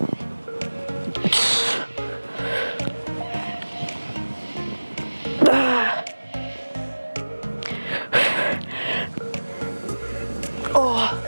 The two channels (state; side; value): inverted; both; correlation -1.00